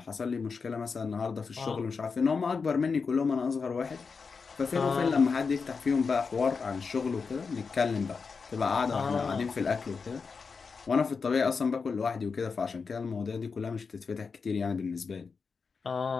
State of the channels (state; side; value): quieter; right; 5.1 dB